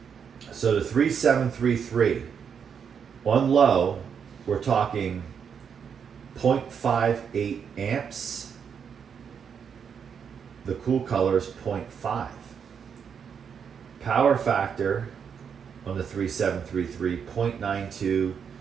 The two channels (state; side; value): quieter; left; 7.1 dB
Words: So the 3733 on low, we're talking 0.58 amps. The Cool Colors 0.5. Power factor on the 3733 0.92,